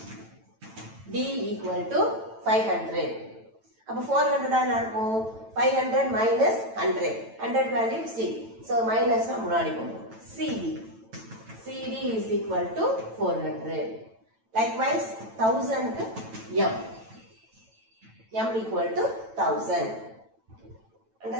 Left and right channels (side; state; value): left; late; 9.0 ms